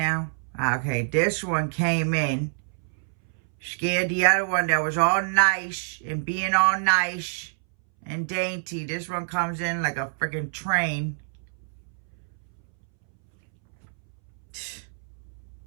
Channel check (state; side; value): silent; left; 61 dB below the other